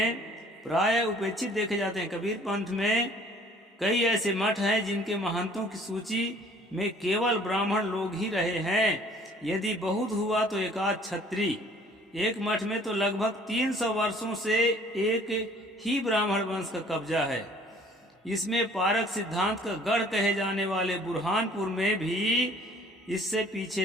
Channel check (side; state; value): both; normal; correlation 0.55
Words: प्राय उपेक्षित देखे जाते हैं। कबीर पंथ में कई ऐसे मठ हैं जिनके महंतों की सूची में केवल ब्राह्मण लोग ही रहे हैं। यदि बहुत हुआ तो एकाध छत्री। एक मठ में तो लगभग 300 वर्षों से एक ही ब्राह्मण वंश का कब्जा है। इसमें पारक सिद्धांत का गढ़ कहे जाने वाले बुरहानपुर में भी इससे